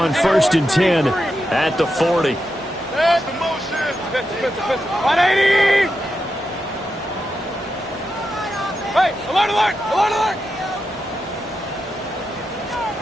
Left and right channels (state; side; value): normal; both; correlation 0.87